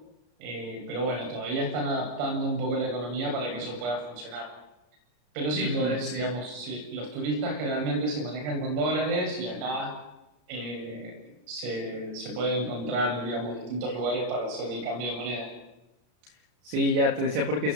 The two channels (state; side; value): late; left; 33 ms